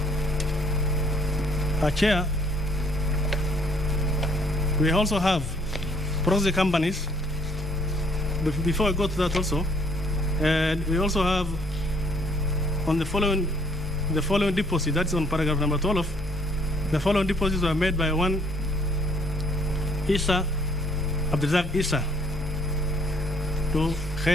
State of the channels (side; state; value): right; noise; hum, 9 dB below the sound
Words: Chair, we also have proxy companies. Before I go to that also, we also have on the following deposit, that's on paragraph number 12, the following deposits were made by one Isa, Abdulrazak Isa, to